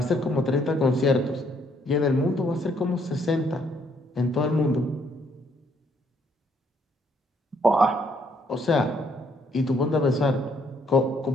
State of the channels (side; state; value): both; normal; correlation 0.68